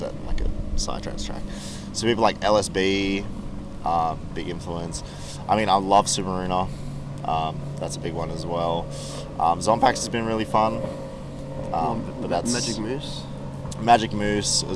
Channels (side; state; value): both; identical; correlation 1.00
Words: that in like a psytrance track? So people like LSB, big influence. I mean, I love Submarina. That's a big one as well. Zompax has been really fun. But that's Magic Moose